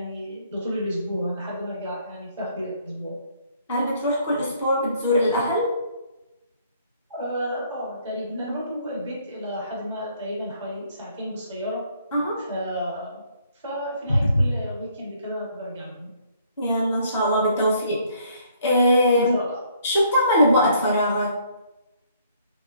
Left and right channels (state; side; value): inverted; both; correlation -0.65